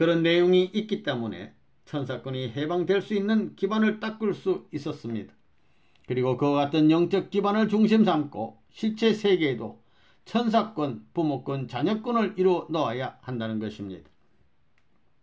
내용이 있기 때문에 천사권이 해방될 수 있는 기반을 닦을 수 있었습니다. 그리고 그와 같은 영적 기반을 중심 삼고 실체 세계에도 천사권, 부모권, 자녀권을 이루어 넣어야 한다는 것입니다.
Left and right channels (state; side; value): identical; both; correlation 1.00